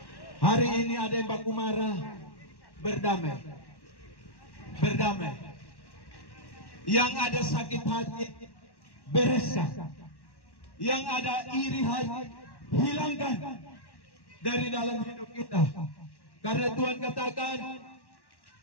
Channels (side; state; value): right; late; 1.1 ms